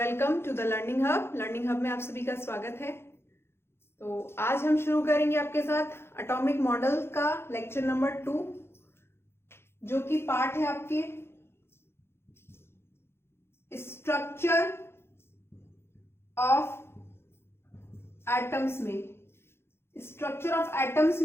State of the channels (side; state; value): right; late; 0.12 ms